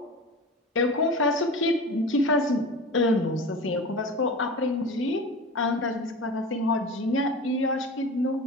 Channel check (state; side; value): normal; both; correlation 0.33